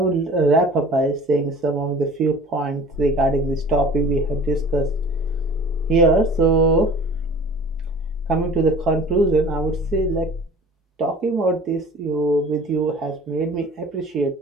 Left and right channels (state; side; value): normal; both; correlation 0.45